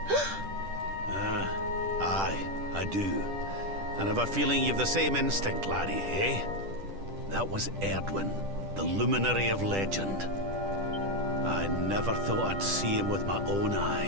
Aye, I do. And I've a feeling you've the same instinct, laddie, eh? That was Erdwin, the luminary of legend. I never thought I'd see him with my own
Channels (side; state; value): left; late; 10 ms